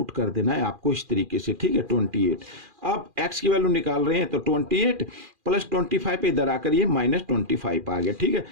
कर देना है आपको इस तरीके से। ठीक है, 28। अब x की वैल्यू निकाल रहे हैं, तो 28 + 25 पे इधर आकर ये -25 आ गया। ठीक है,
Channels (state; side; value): late; left; 2.4 ms